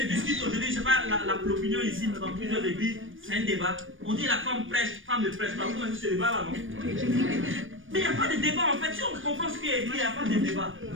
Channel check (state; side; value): late; left; 0.57 ms